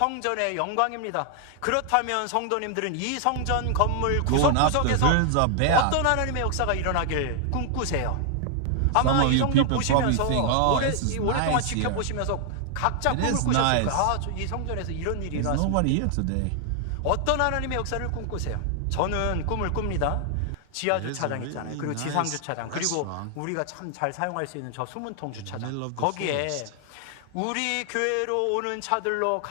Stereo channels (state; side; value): different; both; correlation 0.00